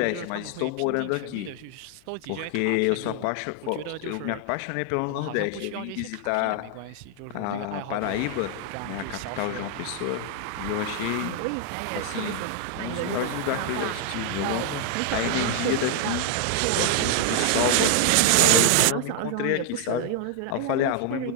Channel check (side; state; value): both; different; correlation 0.00